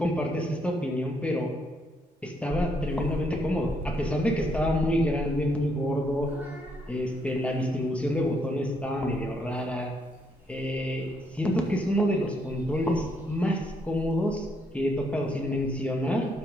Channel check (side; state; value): both; normal; correlation 0.73